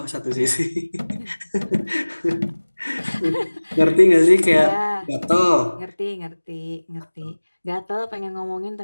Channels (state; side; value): inverted; both; correlation -1.00